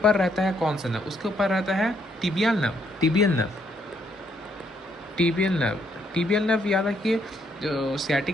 रहता है कौन सा नर्व, उसके ऊपर रहता है टिबियल नर्व, टिबियल नर्व याद रखिए। जो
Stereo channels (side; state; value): both; normal; correlation 0.72